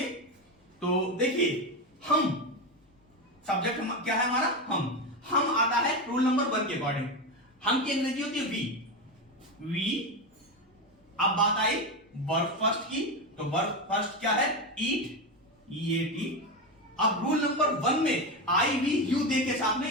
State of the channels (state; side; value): normal; both; correlation 0.15